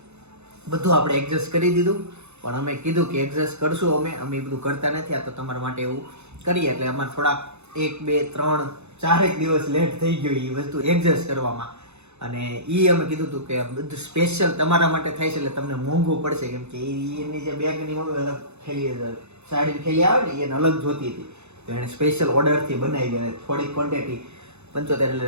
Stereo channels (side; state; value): left; late; 0.81 ms